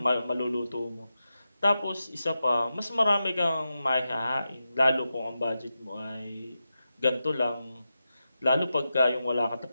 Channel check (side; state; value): both; inverted; correlation -0.90